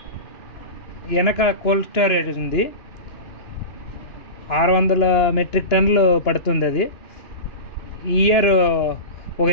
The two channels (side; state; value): right; late; 2.9 ms